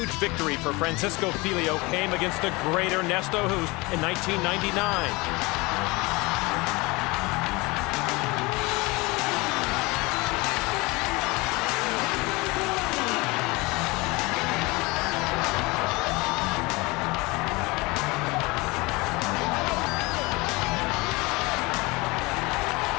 victory for Francisco Filho came against the great Ernesto Hoost in 1999.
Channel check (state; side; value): quieter; right; 24.2 dB